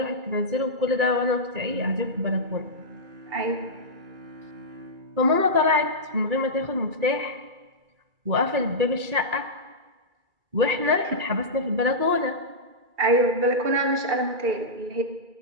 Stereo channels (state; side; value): late; left; 2.3 ms